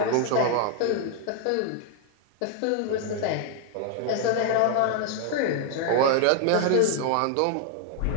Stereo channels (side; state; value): both; different; correlation 0.00